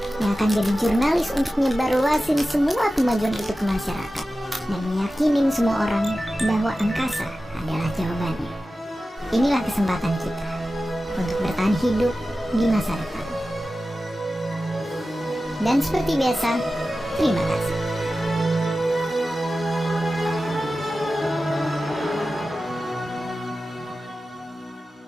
yang akan jadi jurnalis untuk nyebarluasin semua kemajuan itu ke masyarakat, dan meyakinin semua orang bahwa angkasa adalah jawabannya. Inilah kesempatan kita untuk bertahan hidup di masa depan. Dan seperti biasa, terima kasih.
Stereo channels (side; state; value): both; normal; correlation 0.94